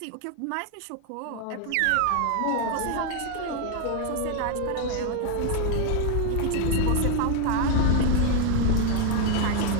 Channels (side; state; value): both; different; correlation 0.00